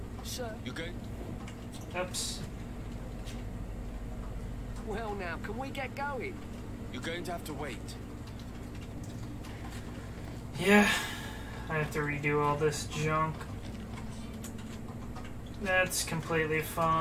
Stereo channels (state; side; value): identical; both; correlation 1.00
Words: sir. You good? Oops. Well now, can we get going? You're going to have to wait. Yeah, I have to redo all this junk. That's completely